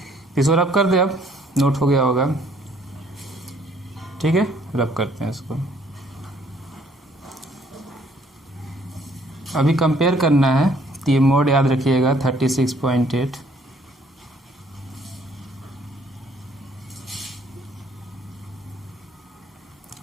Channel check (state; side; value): normal; both; correlation 0.63